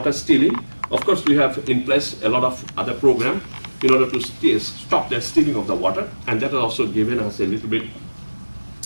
stealing. Of course, we have in place a lot of other programs in order to stop the stealing of the water, and that has also given us a little bit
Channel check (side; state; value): both; inverted; correlation -1.00